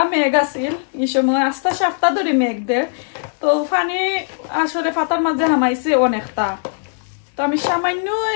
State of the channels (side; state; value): right; silent; digital silence